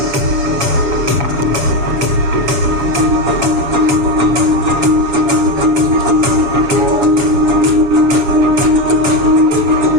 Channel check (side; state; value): left; late; 7.2 ms